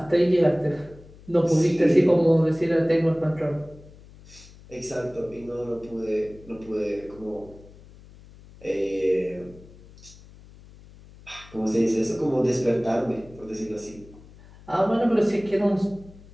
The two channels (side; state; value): left; noise; hum, 22 dB below the sound